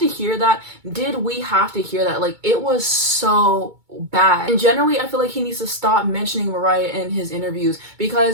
hear that? Did we have to hear that? Like, it was so bad. And generally, I feel like he needs to stop mentioning Mariah in his interviews,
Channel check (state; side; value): late; left; 2.2 ms